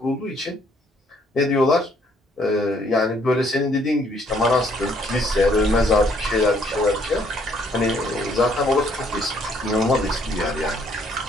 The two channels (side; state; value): both; normal; correlation 0.66